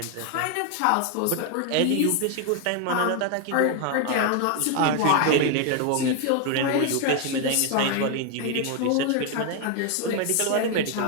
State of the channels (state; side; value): different; both; correlation 0.01